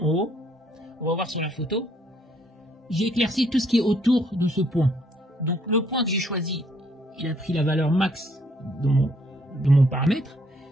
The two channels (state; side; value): normal; both; correlation 0.67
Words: haut, on va voir sur la photo, j'ai éclairci tout ce qui est autour de ce point. Donc le point que j'ai choisi, il a pris la valeur max de mon paramètre,